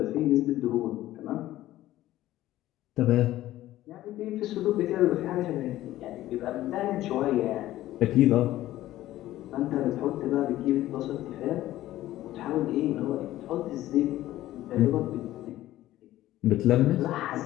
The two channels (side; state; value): right; quieter; 14.9 dB